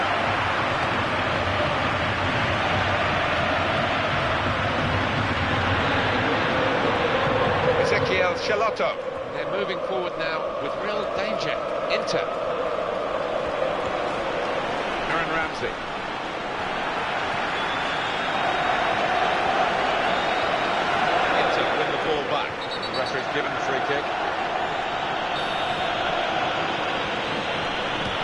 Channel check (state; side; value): identical; both; correlation 1.00